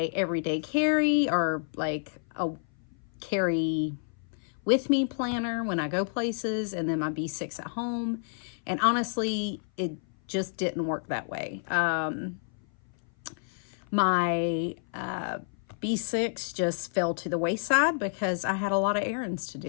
everyday carry, or like a carry with me planner when I go places, and then my B6 at home. And honestly, it just didn't work that way. My B6 just fell to the wayside because I had a lot of errands to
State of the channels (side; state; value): right; silent; 56 dB below the other